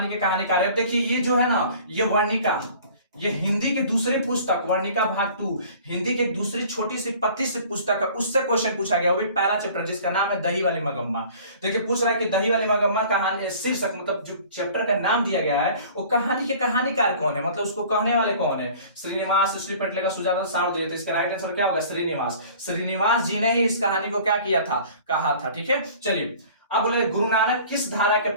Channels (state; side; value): inverted; both; correlation -0.48